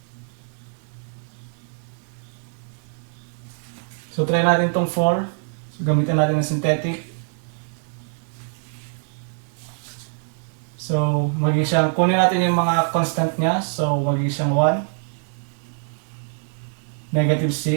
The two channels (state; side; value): silent; left; 63 dB below the other